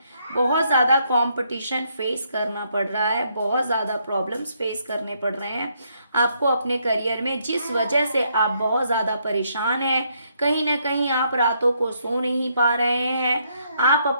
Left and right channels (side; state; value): both; inverted; correlation -0.74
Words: बहुत ज़्यादा कंपटीशन फेस करना पड़ रहा है, बहुत ज़्यादा प्रॉब्लम्स फेस करने पड़ रहे हैं आपको अपने करियर में, जिस वजह से आप बहुत ज़्यादा परेशान हैं। कहीं ना कहीं आप रातों को सो नहीं पा रहे हैं, आप